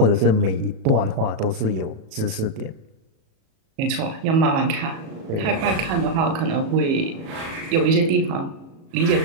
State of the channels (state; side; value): late; left; 37 ms